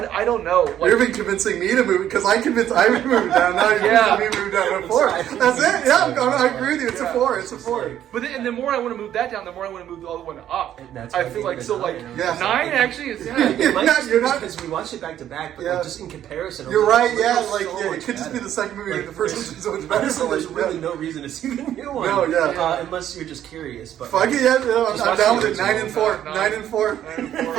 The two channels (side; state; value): left; quieter; 11.1 dB